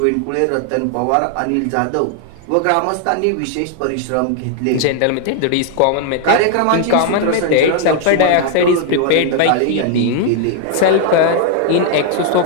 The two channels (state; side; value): different; both; correlation 0.00